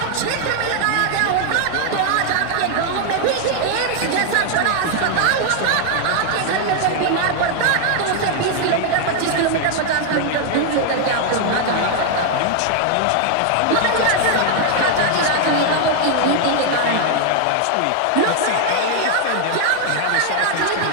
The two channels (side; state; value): both; different; correlation 0.00